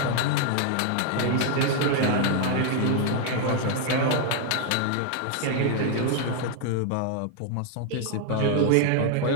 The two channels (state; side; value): different; both; correlation 0.00